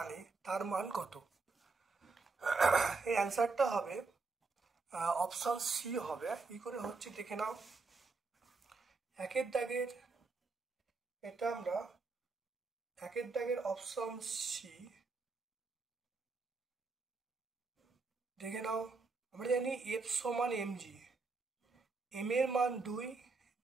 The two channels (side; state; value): left; quieter; 4.1 dB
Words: তার মান কত? এই অ্যান্সারটা হবে অপশন সি হবে। কি করে হচ্ছে দেখে নাও। একের দাগের এটা আমরা একের দাগের অপশন সি দেখে নাও। আমরা জানি এফ সমান এম জি, এম এর মান 2,